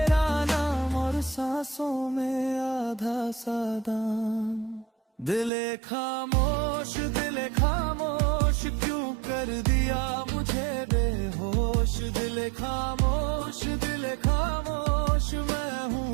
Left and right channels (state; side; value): drops out; left; at 5.5 s